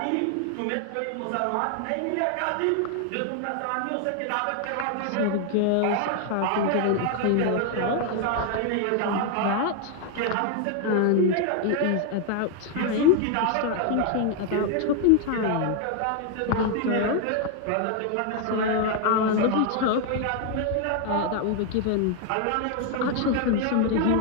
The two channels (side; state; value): both; different; correlation 0.00